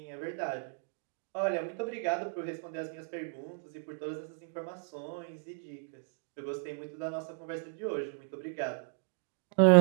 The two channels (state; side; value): silent; left; digital silence